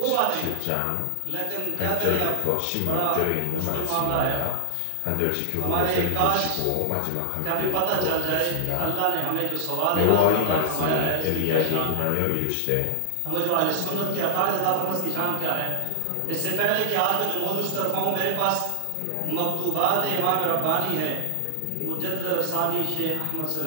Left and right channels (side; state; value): both; different; correlation 0.00